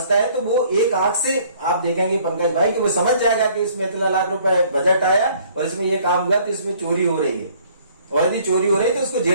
है तो वो एक आंख से आप देखेंगे पंकज भाई कि वो समझ जाएगा कि इसमें इतना लाख रुपए बजट आया और इसमें ये काम हुआ तो इसमें चोरी हो रही है, और यदि चोरी हो रही है तो उसको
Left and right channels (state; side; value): inverted; both; correlation -0.58